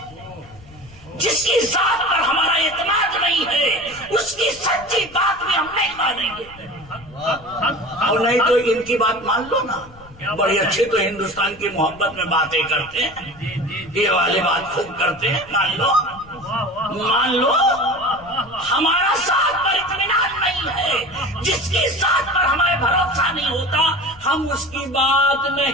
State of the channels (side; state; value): left; noise; rumble, 22 dB below the sound